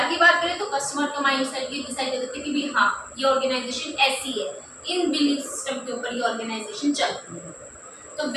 की बात करें तो कस्टमर का माइंड सेट ये डिसाइड कर देते हैं कि भाई हाँ ये ऑर्गेनाइजेशन ऐसी है, इन बिलीफ सिस्टम के ऊपर ये ऑर्गेनाइजेशन चलती है। तो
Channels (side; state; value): both; identical; correlation 1.00